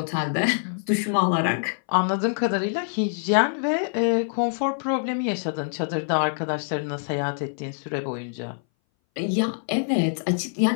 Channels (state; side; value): silent; right; 60 dB below the other